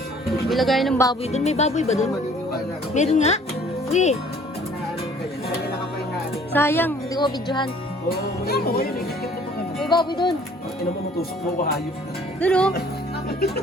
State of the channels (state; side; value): normal; both; correlation 0.55